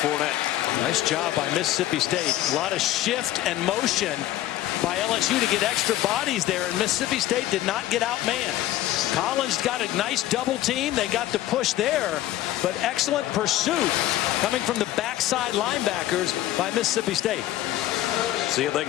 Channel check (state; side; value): quieter; right; 14.3 dB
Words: Nice job by Mississippi State. A lot of shift and motion by LSU to get extra bodies there, and Mississippi State did not get outmanned. Collins got a nice double team. They got the push there, but excellent pursuit coming from the backside linebackers by Mississippi State. See if they